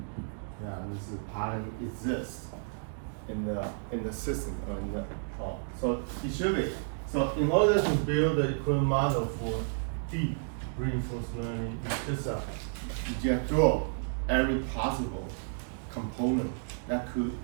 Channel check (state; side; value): silent; left; digital silence